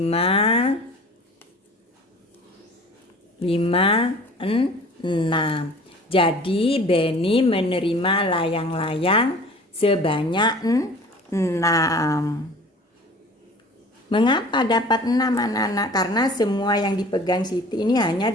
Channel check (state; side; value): normal; both; correlation 0.45